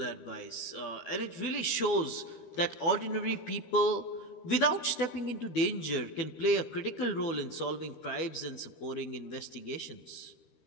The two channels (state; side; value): late; right; 13 ms